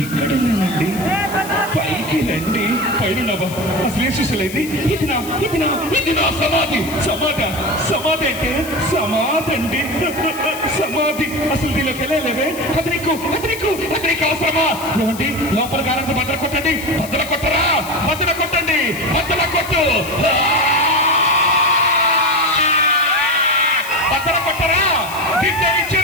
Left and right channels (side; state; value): left; noise; hiss, 14 dB below the sound